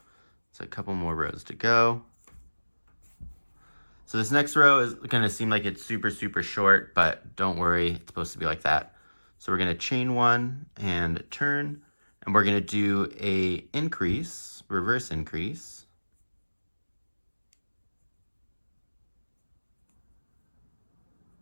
So a couple more rows to go. So this next row is going to seem like it's super, super short, but don't worry, it's supposed to be like that. So we're going to chain 1 and turn, and we're going to do a increase, reverse increase.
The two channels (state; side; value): inverted; both; correlation -1.00